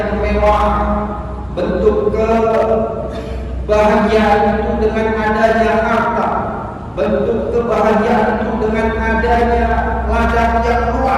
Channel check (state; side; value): identical; both; correlation 1.00